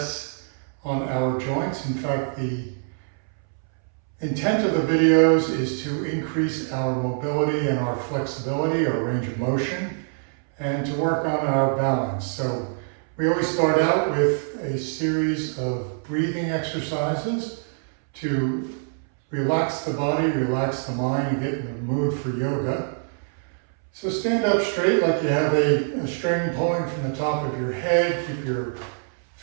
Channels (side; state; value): left; silent; 62 dB below the other